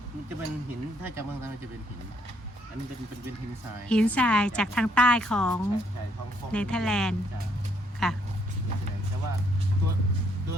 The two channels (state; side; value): normal; both; correlation 0.70